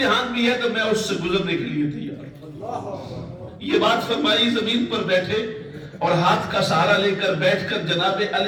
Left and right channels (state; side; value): identical; both; correlation 1.00